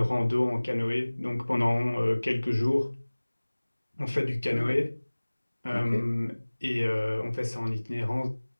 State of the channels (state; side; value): inverted; both; correlation -1.00